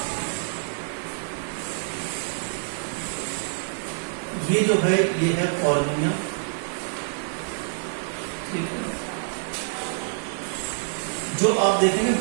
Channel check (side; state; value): left; silent; 61 dB below the other